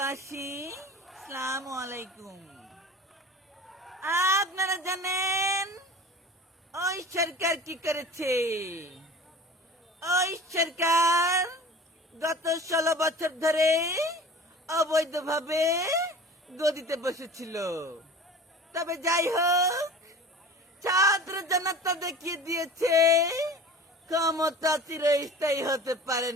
আসসালামু আলাইকুম। আপনারা জানেন ওই সরকার কি করেছে? ওই সরকার গত 16 বছর ধরে অবৈধভাবে গদিতে বসেছিল। তবে যাই হোক, ছাত্র জনতা দেখিয়ে দিয়েছে ক্ষমতা চিরস্থায়ী হতে পারে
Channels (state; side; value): normal; both; correlation 0.39